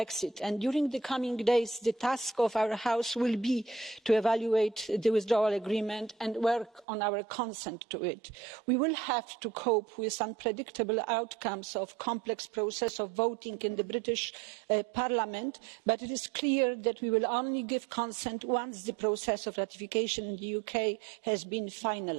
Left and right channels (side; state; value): left; drops out; at 6.9 s